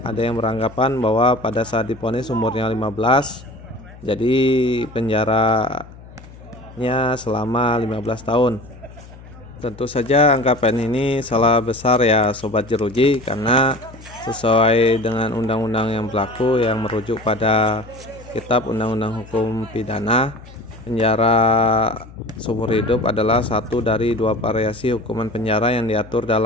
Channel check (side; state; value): left; noise; hum, 19 dB below the sound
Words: ada yang beranggapan bahwa pada saat diponis umurnya 15, jadi penjaranya selama 15 tahun. Tentu saja anggapan ini salah besar ya Sobat Jeruji, karena sesuai dengan undang-undang yang berlaku yang merujuk pada Kitab Undang-Undang Hukum Pidana, penjara seumur hidup adalah satu dari dua variasi hukuman penjara yang diatur